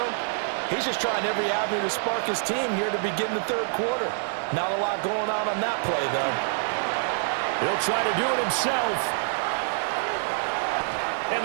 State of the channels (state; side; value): silent; left; digital silence